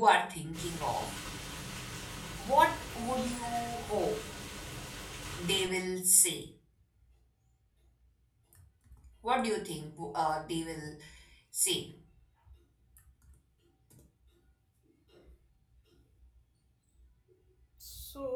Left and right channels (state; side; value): identical; both; correlation 1.00